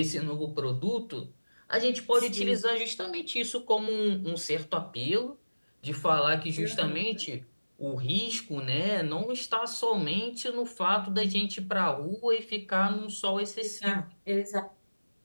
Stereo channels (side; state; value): both; inverted; correlation -1.00